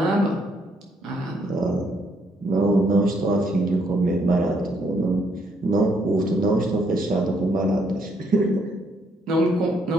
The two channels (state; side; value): normal; both; correlation 0.71